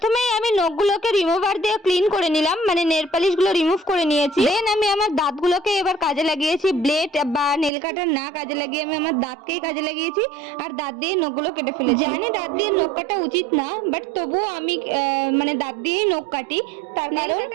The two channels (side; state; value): left; drops out; at 7.7 s